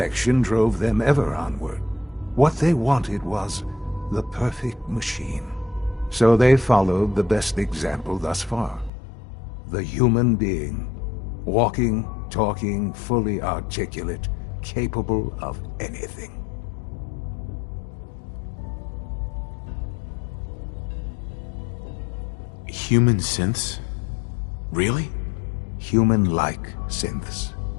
drove them ever onward. What they wanted was the perfect machine. So they followed the best example thus far. The human being. Walking, talking, fully articulate, capable of anything. Human synths? Really? Human-like synths.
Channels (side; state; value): right; drops out; at 8.9 s